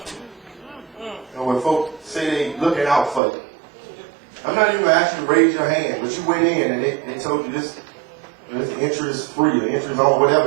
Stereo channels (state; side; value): drops out; left; at 3.2 s